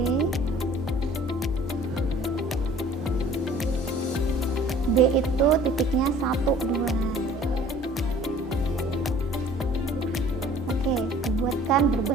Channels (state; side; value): normal; both; correlation 0.51